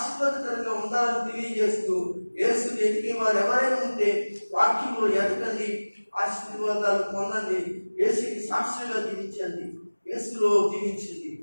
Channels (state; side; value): inverted; both; correlation -1.00